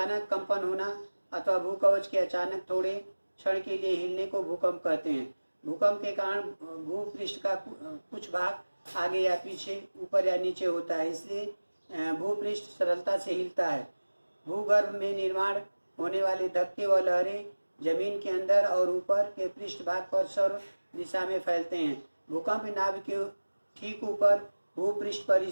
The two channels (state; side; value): inverted; both; correlation -1.00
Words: कंपन होना अथवा भूकवच के अचानक थोड़े क्षण के लिए हिलने को भूकंप कहते हैं। भूकंप के कारण भूपृष्ठ का कुछ भाग आगे या पीछे, ऊपर या नीचे होता है, इसलिए भूपृष्ठ सरलता से हिलता है। भूगर्भ में निर्माण होने वाले धक्के व लहरें जमीन के अंदर और ऊपर के पृष्ठ भाग पर सर्व दिशा में फैलते हैं। भूकंप नाभ के ठीक ऊपर भूपृष्ठ पर